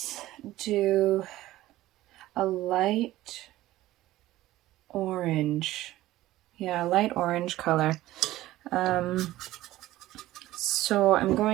do a light orange. Yeah, light orange color. So I'm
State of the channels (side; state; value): left; quieter; 16.0 dB